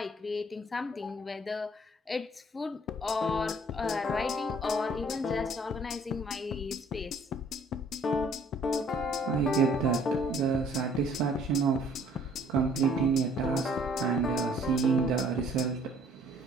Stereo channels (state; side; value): normal; both; correlation 0.59